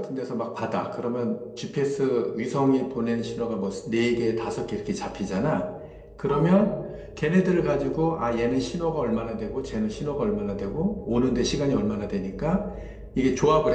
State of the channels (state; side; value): identical; both; correlation 1.00